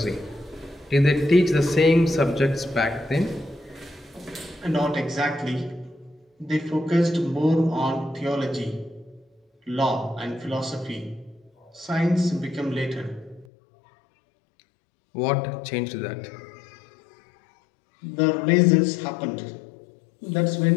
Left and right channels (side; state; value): right; drops out; at 13.5 s